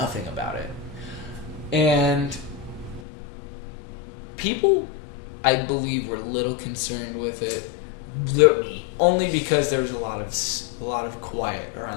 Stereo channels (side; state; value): right; drops out; at 3.0 s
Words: about it. And people, I believe, were a little concerned with it, only because there was a lot of quiet